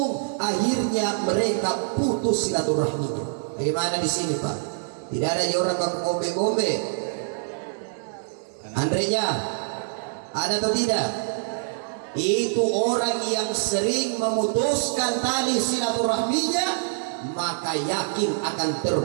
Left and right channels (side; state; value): left; silent; 62 dB below the other